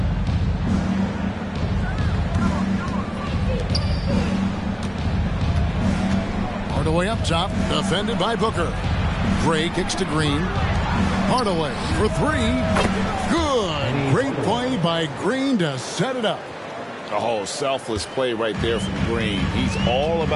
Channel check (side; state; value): both; identical; correlation 1.00